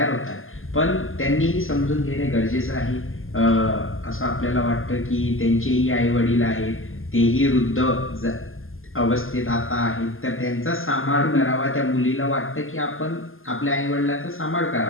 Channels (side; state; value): right; late; 0.59 ms